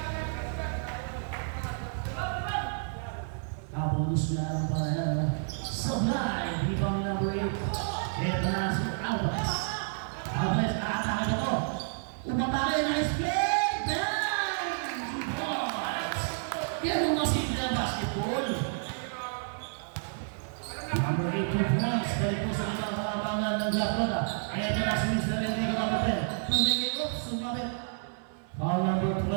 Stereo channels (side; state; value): left; silent; 58 dB below the other